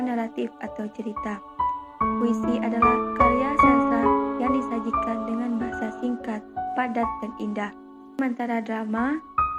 naratif atau cerita. Puisi adalah karya sastra yang disajikan dengan bahasa singkat, padat, dan indah. Sementara drama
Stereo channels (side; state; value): both; identical; correlation 1.00